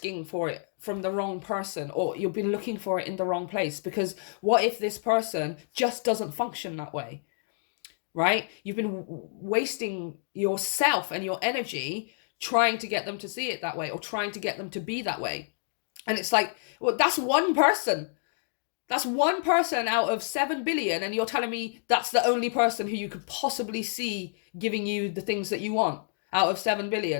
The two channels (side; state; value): right; silent; digital silence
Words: for it from the wrong person, or you've been looking for it in the wrong place, because what if this person just doesn't function that way, right? You've been wasting yourself and your energy trying to get them to see it that way, or trying to get them to be that way. And it's like, well, that's one person. That's one person out of 7 billion, and you're telling me that's the only person who you could possibly see giving you the things that you want out of 7